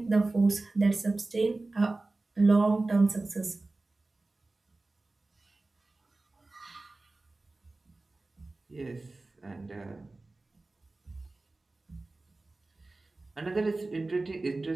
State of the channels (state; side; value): quieter; left; 3.2 dB